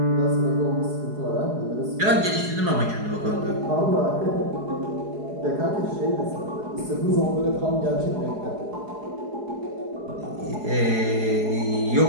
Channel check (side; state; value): left; late; 4.8 ms